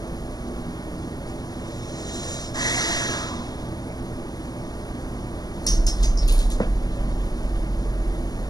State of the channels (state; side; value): late; right; 0.19 ms